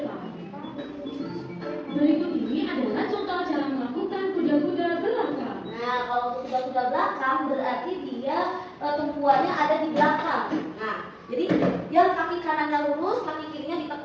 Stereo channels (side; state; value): both; identical; correlation 1.00